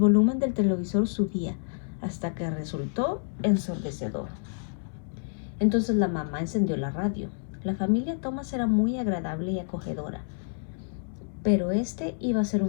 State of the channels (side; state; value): right; silent; 59 dB below the other